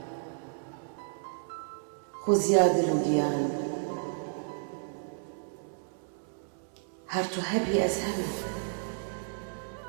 خۆزیا دل و گیان، هەر تو هەبی ئەز هەمە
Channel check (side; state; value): left; silent; 56 dB below the other